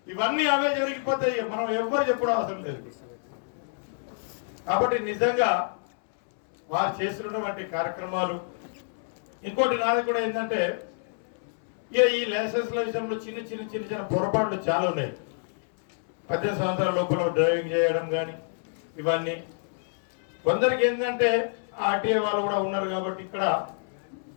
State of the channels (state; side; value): silent; right; digital silence